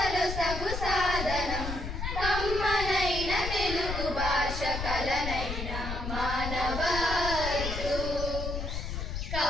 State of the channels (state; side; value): noise; left; rumble, 4 dB below the sound